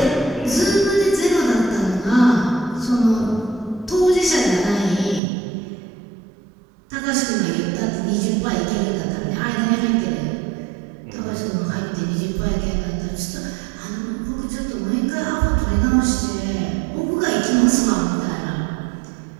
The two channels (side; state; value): left; drops out; at 5.2 s